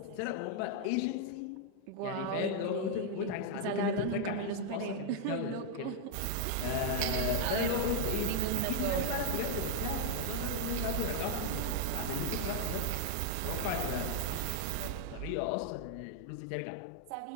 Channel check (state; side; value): different; both; correlation 0.00